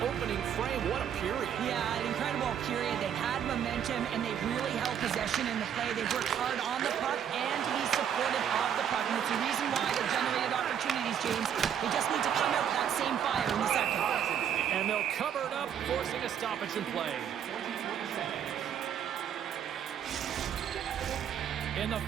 opening frame. What a period. Yeah, an incredible period. They had momentum, and they really held possession in the play. They worked hard on the puck and to be supported off the puck. And it's the reason why they've generated opportunities, James. They just need to come out with that same fire in the second. And they'll cover it up, forcing a stoppage in play. In the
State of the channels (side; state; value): left; quieter; 8.9 dB